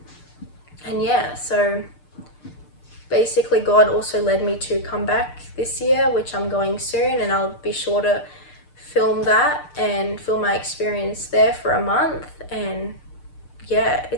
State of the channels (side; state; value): right; late; 6.7 ms